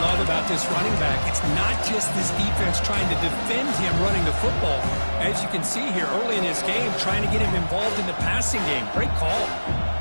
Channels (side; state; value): both; inverted; correlation -1.00